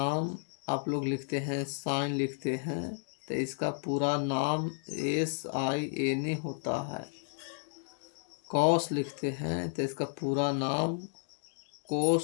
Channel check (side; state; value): right; silent; 56 dB below the other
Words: आप लोग लिखते हैं, साइन लिखते हैं तो इसका पूरा नाम SIN होता है। कॉस लिखते हैं तो इसका पूरा नाम